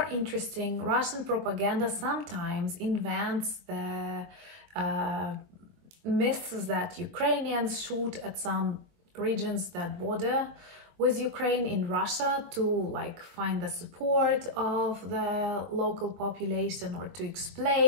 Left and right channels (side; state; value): left; late; 22 ms